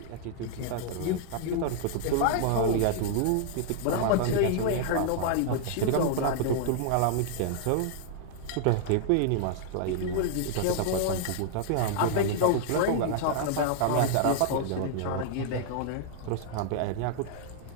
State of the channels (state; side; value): different; both; correlation -0.01